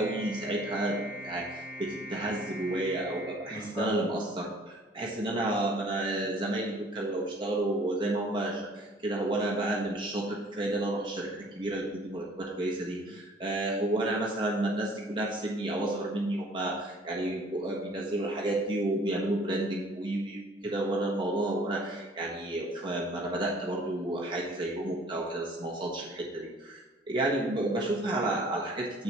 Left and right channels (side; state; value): both; normal; correlation 0.54